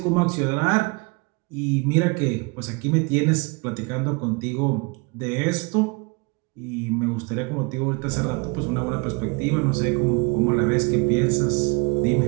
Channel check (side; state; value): left; quieter; 29.4 dB